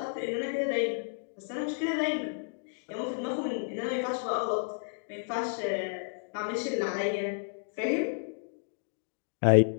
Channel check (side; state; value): right; silent; digital silence